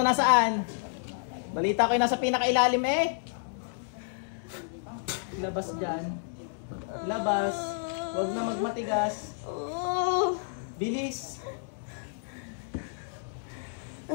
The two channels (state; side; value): silent; right; digital silence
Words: nasaan? Balita ko yung nasa pinakailalim eh. Labas dyan. Labas. Huwag na magmatigas. Bilis.